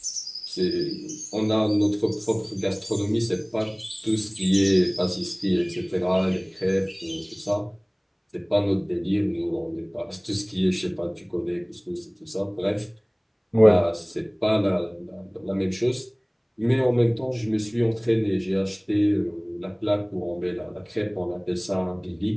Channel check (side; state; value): both; identical; correlation 1.00